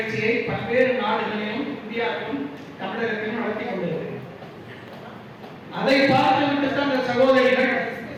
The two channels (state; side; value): identical; both; correlation 1.00